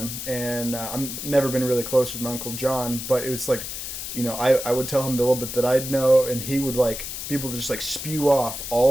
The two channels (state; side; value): noise; left; hiss, 7 dB below the sound